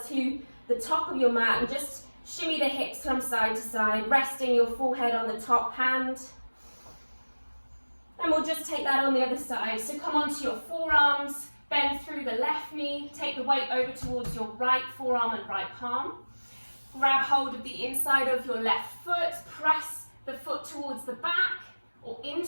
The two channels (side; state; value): both; inverted; correlation -1.00